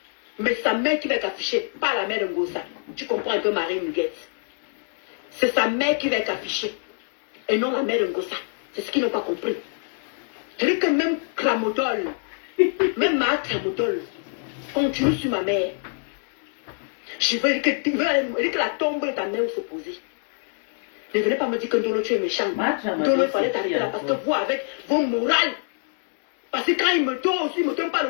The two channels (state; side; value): silent; right; 60 dB below the other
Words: Mais sa mère qui va être affichée, pas la mère de Ngosa. Tu comprends un peu Marie Muguet. C'est sa mère qui va être affichée. Et non la mère de Ngosa. C'est ce qu'ils n'ont pas compris. Je dis que même Kramodol, même ma Kramodol, continue sur ma mère. Je veux dire que la tombe de ta mère va se poser. Ne venez pas me dire que Ndolo tu es méchant. Ndolo, il fallait t'arrêter là parce que vous, avec vos morales, parce que quand il me donne aussi, il ne me donne pas le